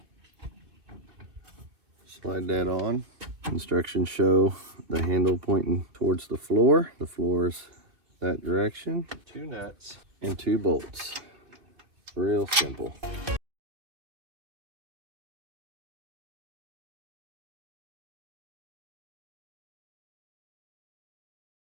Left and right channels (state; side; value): late; left; 2.6 ms